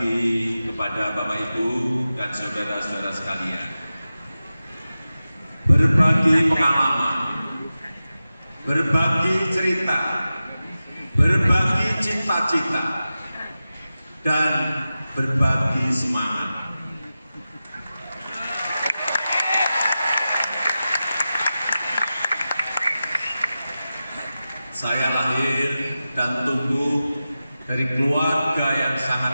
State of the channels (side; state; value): both; inverted; correlation -0.94